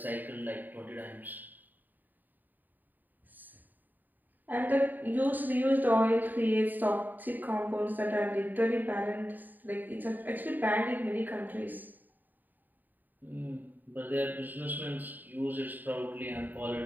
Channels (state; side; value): late; left; 0.088 ms